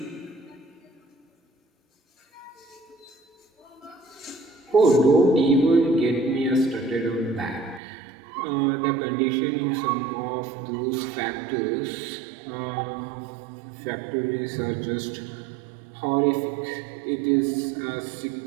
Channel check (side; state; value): left; drops out; at 7.8 s